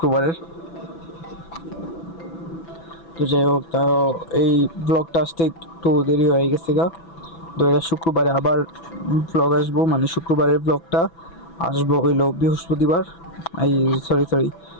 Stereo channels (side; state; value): right; late; 6.0 ms